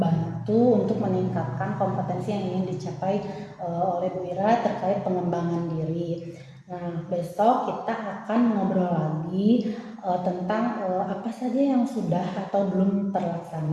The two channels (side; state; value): both; identical; correlation 1.00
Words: untuk meningkatkan kompetensi yang ingin dicapai oleh Bu Ira terkait pengembangan diri. Nah, besok kita akan ngobrol lagi tentang apa saja yang sudah atau belum